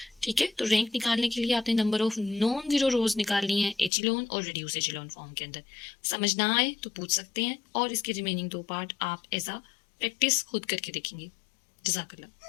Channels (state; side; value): drops out; right; at 3.9 s